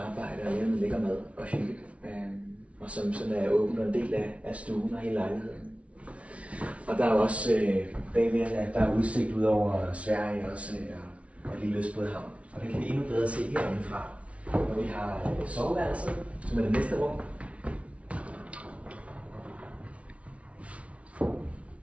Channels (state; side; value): late; left; 0.063 ms